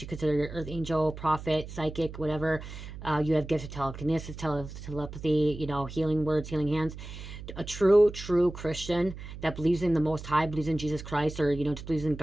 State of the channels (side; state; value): right; noise; hum, 11 dB below the sound